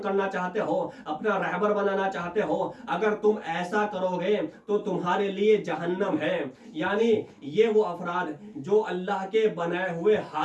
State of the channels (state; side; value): identical; both; correlation 1.00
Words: کرنا چاہتے ہو، اپنا رہبر بنانا چاہتے ہو؟ اگر تم ایسا کرو گے تو تمہارے لیے جہنم ہے۔ یعنی یہ وہ افراد جو اللہ کے بنائے ہوئے